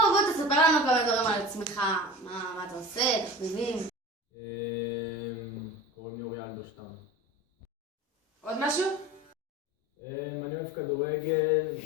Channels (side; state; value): both; normal; correlation 0.35